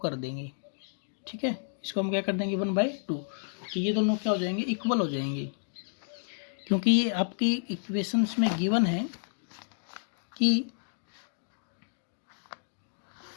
कर देंगे। ठीक है, इसको हम क्या कर देंगे, 1/2। तो ये दोनों क्या हो जाएंगे, इक्वल हो जाएंगे। क्योंकि ये आपकी इक्वेशंस में गिवन है कि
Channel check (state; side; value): silent; right; digital silence